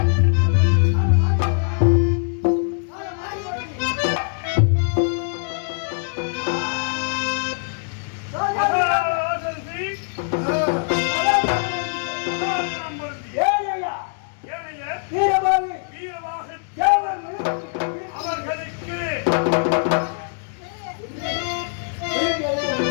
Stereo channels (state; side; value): silent; right; 64 dB below the other